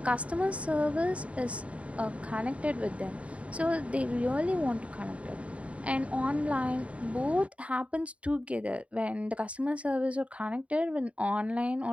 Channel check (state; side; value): late; left; 0.064 ms